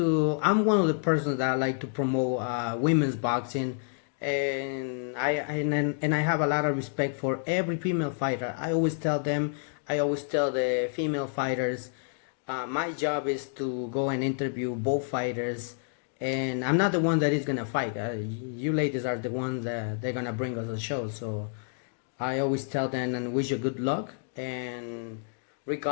one of the persons that I like to promote women's boxing, and I have a lot of respect for every female fighter. I always tell the female fighters, my job is to go and interview both fighters and I'm not the one that is gonna fight. You ladies are the ones that they're gonna bring us a show. So I always tell them and wish you good luck. And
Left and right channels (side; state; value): right; silent; digital silence